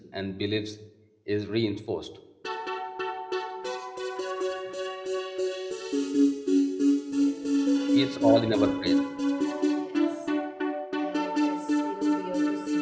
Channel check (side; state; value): both; identical; correlation 1.00